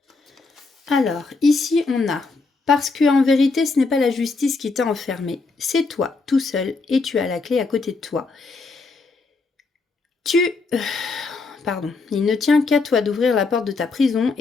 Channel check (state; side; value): quieter; right; 4.0 dB